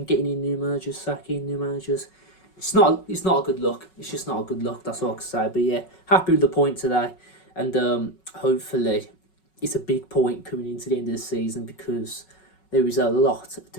getting in new managers, sacking new managers. It's not a good look. It's just not a good look. That's all I can say. But, yeah, happy with the point today. And hopefully it's a big point coming into the end of the season, because there is a lot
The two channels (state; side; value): late; right; 5.4 ms